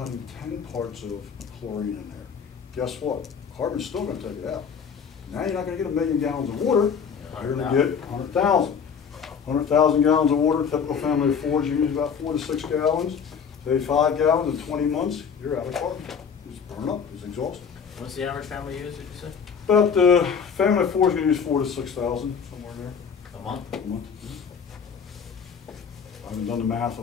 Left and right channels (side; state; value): right; quieter; 6.7 dB